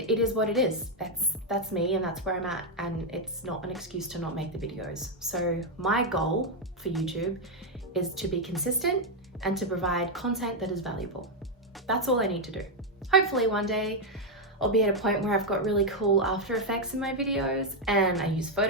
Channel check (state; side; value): normal; both; correlation 0.01